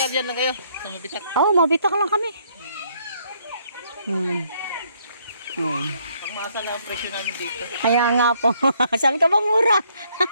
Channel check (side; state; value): both; inverted; correlation -0.68